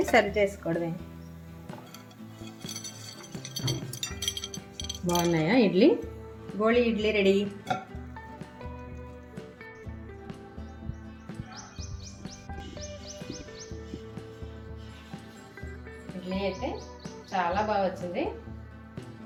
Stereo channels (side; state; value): both; identical; correlation 1.00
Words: సర్వ్ చేసుకోవడమే. బాగున్నాయా ఇడ్లీ? గోళీ ఇడ్లీ రెడీ. ఇడ్లీ అయితే చాలా బాగా వచ్చింది.